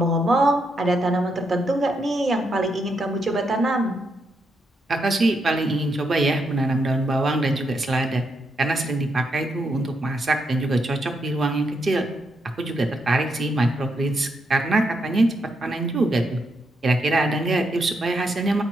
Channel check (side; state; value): both; normal; correlation 0.80